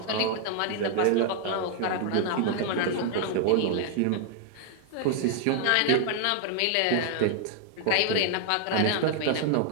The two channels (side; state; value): both; different; correlation 0.00